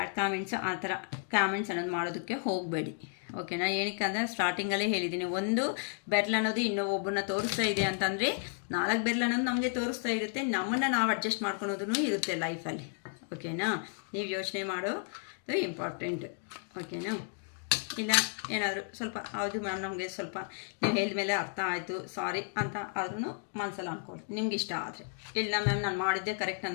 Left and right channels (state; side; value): silent; right; 56 dB below the other